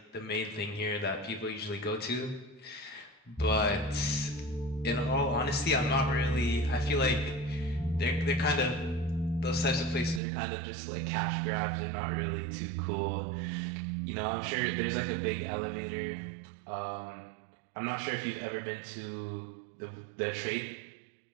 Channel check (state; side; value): drops out; left; at 10.2 s